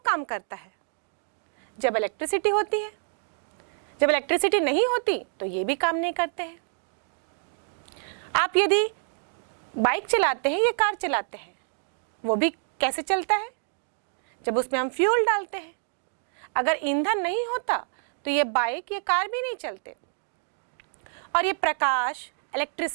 काम करता है? जब इलेक्ट्रिसिटी होती है। जब इलेक्ट्रिसिटी नहीं होती तो ये भी काम नहीं करते हैं। आप यदि बाइक चलाते हैं या कार चलाते हैं, वो भी कैसे चलता है? जब उसमें हम फ्यूल डालते हैं। अगर ईंधन नहीं होता तो ये बाइक या कार भी नहीं चलते। और ये प्रकाश,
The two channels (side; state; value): left; silent; 60 dB below the other